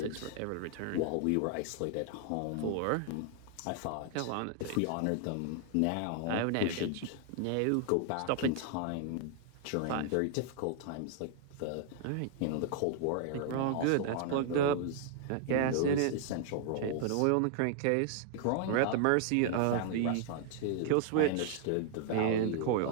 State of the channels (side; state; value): both; different; correlation 0.00